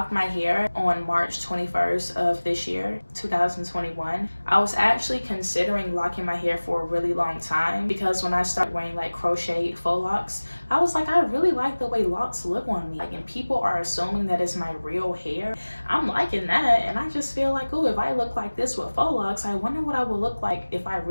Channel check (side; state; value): both; inverted; correlation -1.00